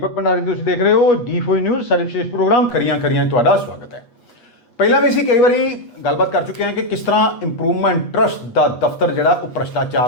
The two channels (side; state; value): right; late; 8.3 ms